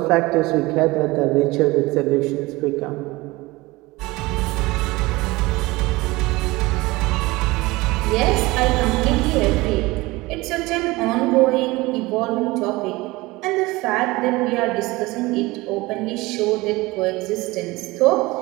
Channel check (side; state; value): left; quieter; 21.4 dB